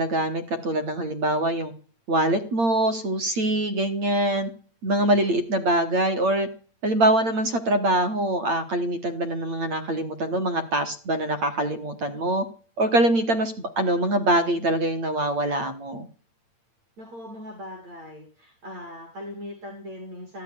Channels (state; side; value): late; left; 8.8 ms